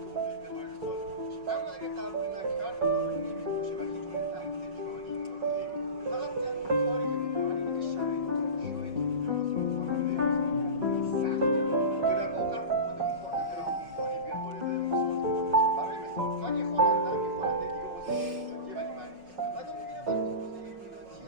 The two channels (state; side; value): late; left; 5.4 ms